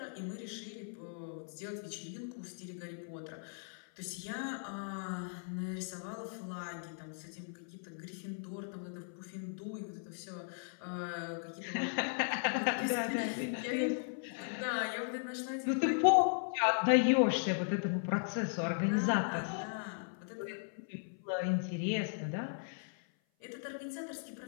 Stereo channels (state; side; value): silent; right; 53 dB below the other